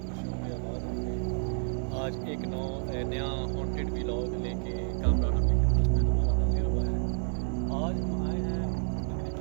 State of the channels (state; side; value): silent; left; digital silence